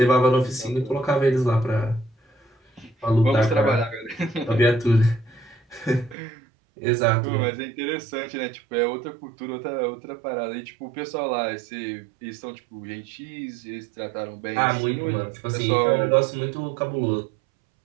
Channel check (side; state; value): left; drops out; at 6.2 s